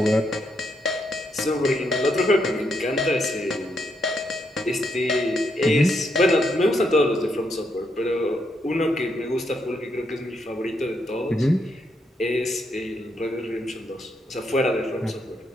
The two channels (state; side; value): normal; both; correlation 0.78